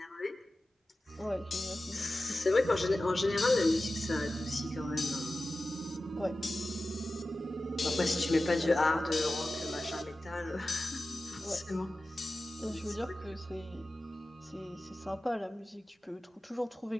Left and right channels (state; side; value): normal; both; correlation 0.94